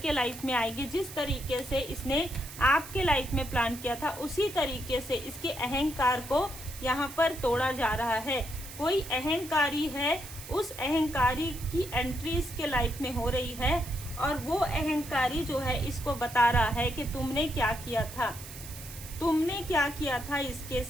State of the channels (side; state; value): right; noise; hiss, 13 dB below the sound